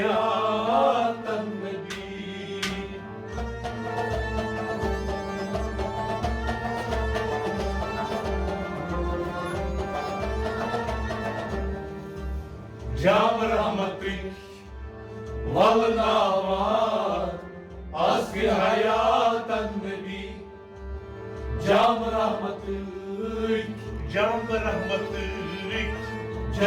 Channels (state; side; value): identical; both; correlation 1.00